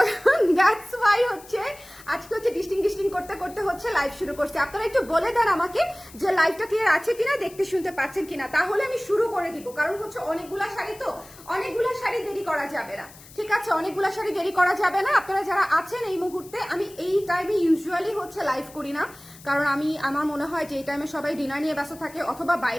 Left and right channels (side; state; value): left; noise; hiss, 21 dB below the sound